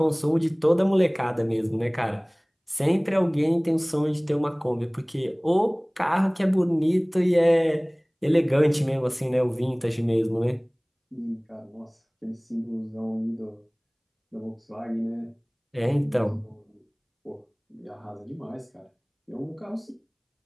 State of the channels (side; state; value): both; identical; correlation 1.00